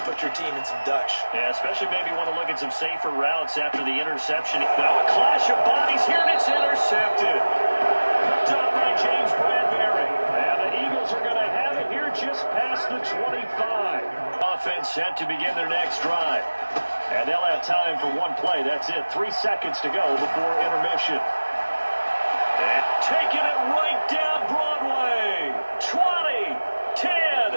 put your team in some Dutch. Yeah, especially maybe want to look at some safer routes after the interception. Now a clash of bodies here, and it's intercepted. Picked up by James Bradbury. And the Eagles are going to have it here just past the 25. Offense set to begin their next drive. And they'll have time for one play. That's it. 3 seconds to go before intermission. And taking it right down Broadway. 20,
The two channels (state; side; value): inverted; both; correlation -1.00